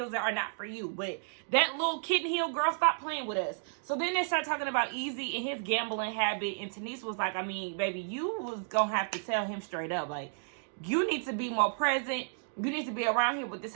are not for you. But that little kitten heel, girl, stop playing with us. So then they start talking about Easy and his gambling habit. And Tanisha was like, baby, you was going to have to tell him straight up. Like, you need to be more present. You need to be around here with this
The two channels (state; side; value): silent; left; digital silence